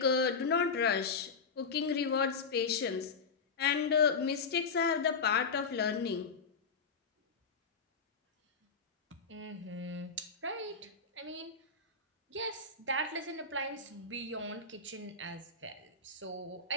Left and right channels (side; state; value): right; quieter; 5.0 dB